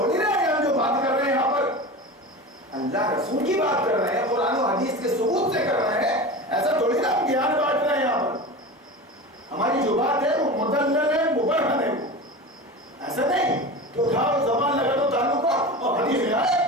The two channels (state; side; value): normal; both; correlation 0.30